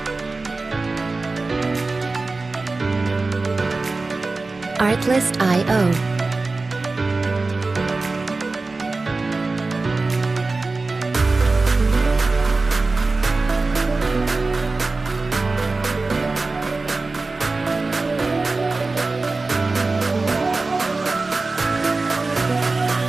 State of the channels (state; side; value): quieter; left; 3.6 dB